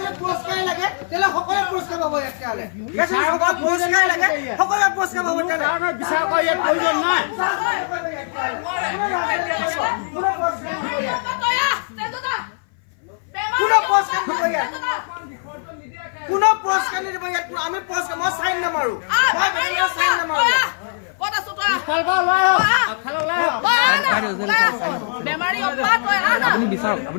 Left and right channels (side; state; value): right; silent; 59 dB below the other